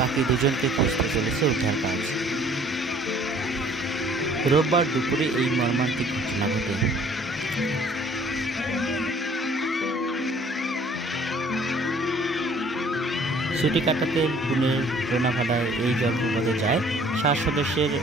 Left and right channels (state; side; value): normal; both; correlation 0.56